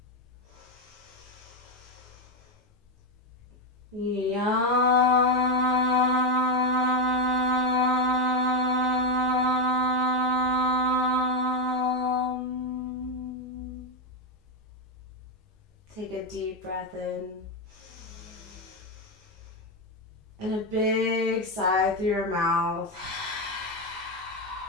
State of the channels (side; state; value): both; normal; correlation 0.08